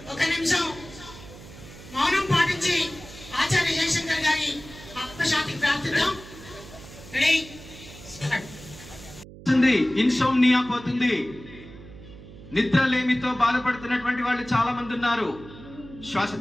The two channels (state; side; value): noise; right; hum, 17 dB below the sound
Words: ఒక నిమిషం మౌనం పాటించి ఆచార్య జయశంకర్ గారి ఆత్మశాంతికి ప్రార్థిద్దాం. ఇన్సోమ్నియా పోతుంది. నిద్రలేమితో బాధపడుతున్నటువంటి వాళ్ళు చాలా మంది ఉన్నారు. శ్వాస